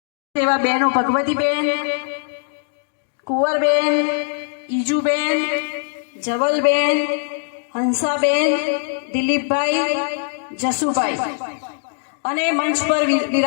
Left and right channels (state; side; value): silent; right; 65 dB below the other